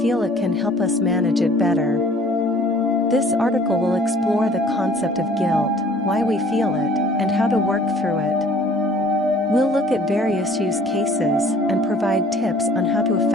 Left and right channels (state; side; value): normal; both; correlation 0.53